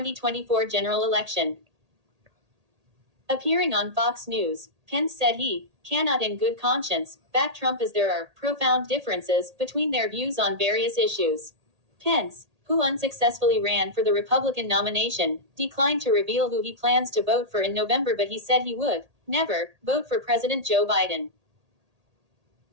general election. Appearing on Fox News, Pence said he cannot in good conscience back Trump as there are profound differences between their views on various issues. Pence, who unsuccessfully ran for the Republican nomination, declined to reveal who he plans to vote for in November, but he said he would never vote for President Joe Biden.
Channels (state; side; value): late; left; 1.8 ms